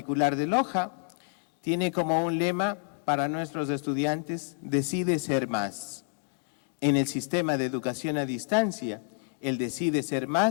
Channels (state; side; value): silent; right; 59 dB below the other